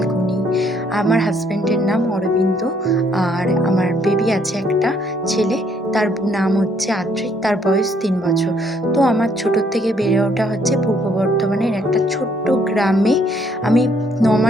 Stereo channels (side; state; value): both; normal; correlation 0.67